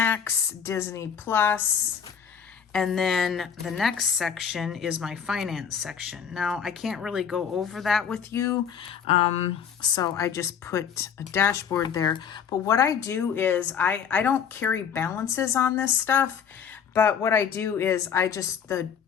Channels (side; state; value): right; quieter; 7.4 dB